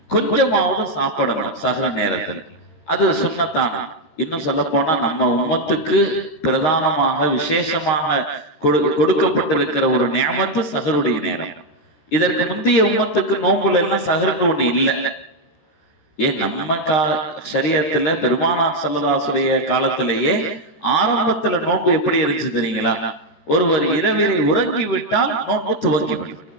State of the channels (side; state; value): right; late; 13 ms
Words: கொஞ்சமாவது சாப்பிடணும் சஹர் நேரத்தில். அது சுன்னத்தான. இன்னும் சொல்ல போனா நம்ம உம்மத்துக்கு பிரதானமாக விசேஷமாக கொடுக்கப்பட்டிருக்கிற ஒரு நியமத்து சஹருடைய நேரம். இதற்கு முந்தைய உம்மத்துக்கு நோம்புல எல்லாம் சஹர்னு ஒண்ணு இல்லை. ஏன் நம்ம ஷரியத்துல பெருமானார் ஸல்லல்லாஹு காலத்திலேயே ஆரம்பத்துல நோன்பு எப்படி இருந்துச்சு தெரியுங்களா? ஒருவர் இரவிலே உறங்கி விட்டால் நோன்பு துவங்கிவிடும்,